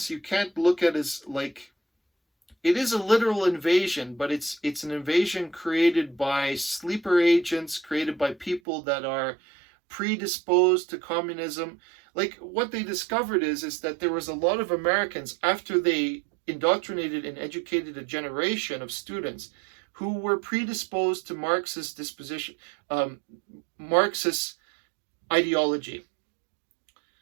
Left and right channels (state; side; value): drops out; left; at 8.6 s